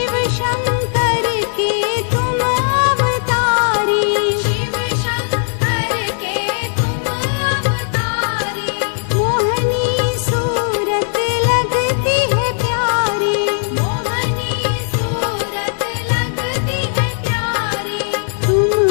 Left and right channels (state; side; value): silent; right; 68 dB below the other